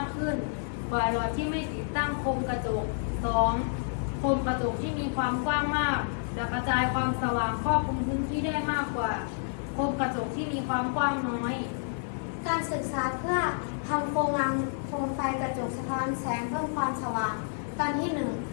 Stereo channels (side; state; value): right; silent; 58 dB below the other